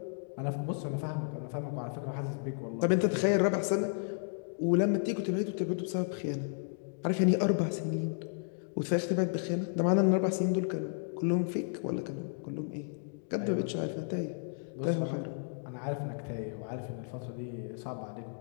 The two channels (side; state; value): right; silent; digital silence